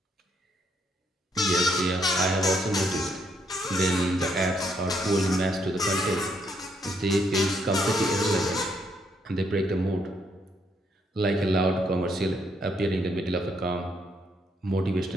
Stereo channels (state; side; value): normal; both; correlation 0.73